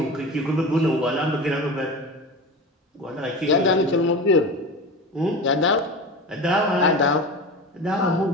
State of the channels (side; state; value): both; normal; correlation 0.29